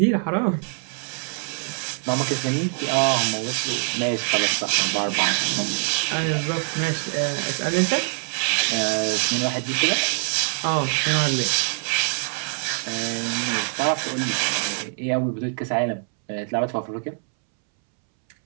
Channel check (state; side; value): silent; left; 63 dB below the other